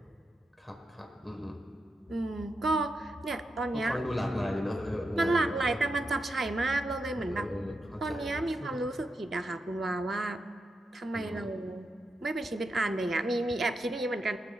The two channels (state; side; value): normal; both; correlation 0.86